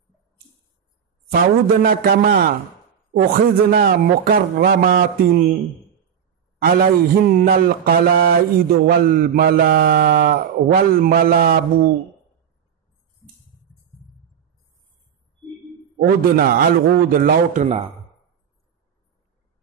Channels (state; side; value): quieter; left; 8.3 dB